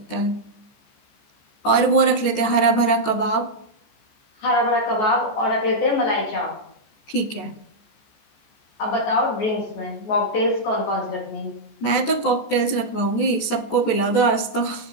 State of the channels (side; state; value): right; late; 14 ms